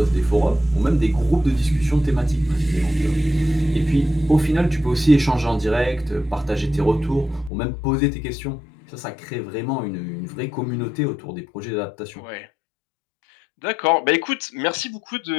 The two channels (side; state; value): right; drops out; at 7.5 s